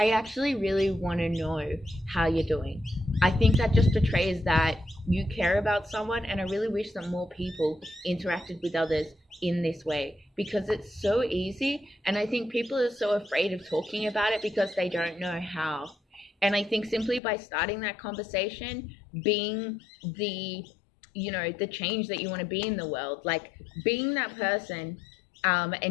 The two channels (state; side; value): drops out; right; at 17.2 s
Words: actually really want to know how you're doing. I think that just betrays that you care about someone, and I really wish that more people interacted with others in this way, because it's so easy, and I think people are so afraid of talking about it because they don't know how. And I think simply by starting that conversation, being the, you know, the change that you want to be in the world, like being that person,